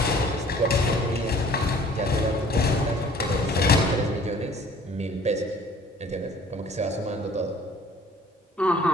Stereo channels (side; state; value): both; normal; correlation 0.52